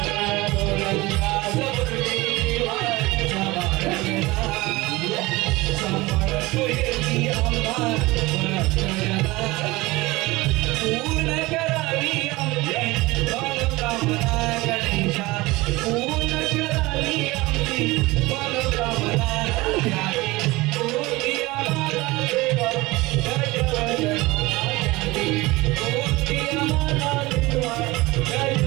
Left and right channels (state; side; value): quieter; left; 21.1 dB